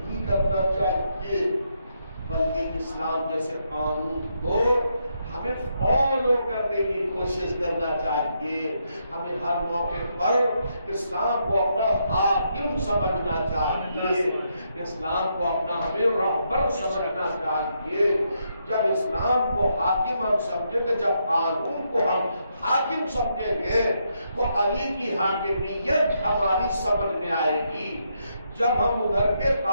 کرنا چاہیے، بلکہ اسلام جیسے قانون کو ہمیں فالو کرنے کی کوشش کرنا چاہیے. ہمیں ہر موقع پر اسلام کو اپنا حاکم سمجھنا چاہیے، اسلام کو اپنا ہمیں رہبر سمجھنا چاہیے. جب اسلام کو حاکم ہم سمجھیں گے، جب قانون کو ہم حاکم سمجھیں گے تو علی کی حاکمیت ہماری سمجھ میں آئے گی. جب ہم ادھر کے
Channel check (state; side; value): inverted; both; correlation -0.79